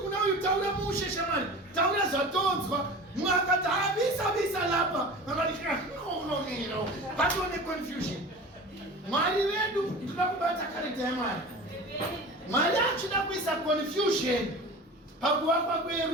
uyu taura mushe shamwari, taura zvatonzwa. Mumwe akati visa lapa, akati no, patone confusion. Mwari vedu ndoda kubata character yaMwari. Mwari achida kuisa confusion pakuvakwa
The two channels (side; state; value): both; normal; correlation 0.36